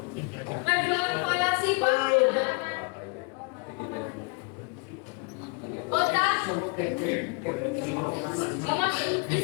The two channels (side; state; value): right; quieter; 35.3 dB